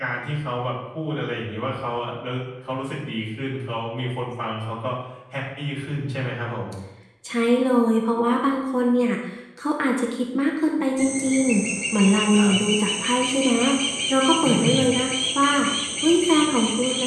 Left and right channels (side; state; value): both; identical; correlation 1.00